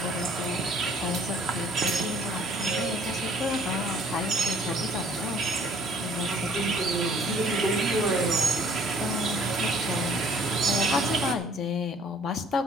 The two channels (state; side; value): normal; both; correlation 0.57